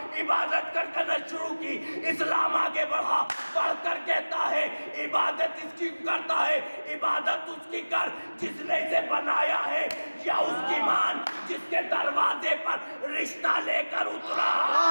عبادت کرنا شروع کی، اسلام آگے بڑھا، پڑھ کر کہتا ہے عبادت اس کی کرتا ہے، عبادت اس کی کر جس نے اسے بنایا ہے، یا اس کی مان جس کے دروازے پر رشتہ لے کر اترا۔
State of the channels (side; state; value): both; inverted; correlation -1.00